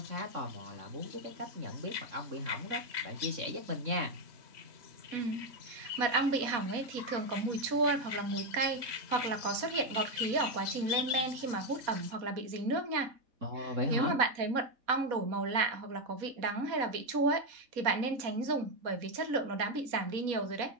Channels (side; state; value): left; late; 4.1 ms